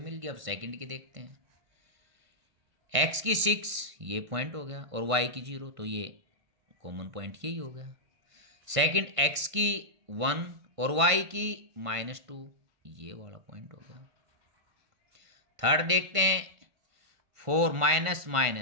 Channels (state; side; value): late; left; 1.5 ms